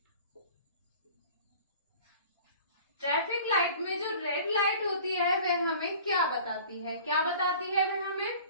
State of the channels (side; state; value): both; inverted; correlation -0.45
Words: traffic light में जो रेड लाइट होती है वह हमें क्या बताती है? क्या बताती है वह हमें?